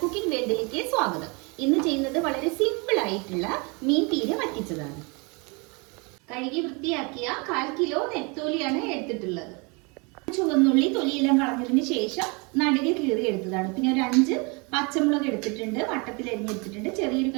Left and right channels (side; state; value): left; quieter; 30.4 dB